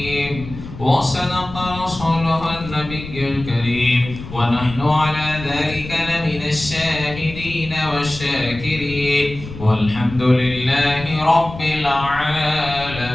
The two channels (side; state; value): left; noise; rumble, 12 dB below the sound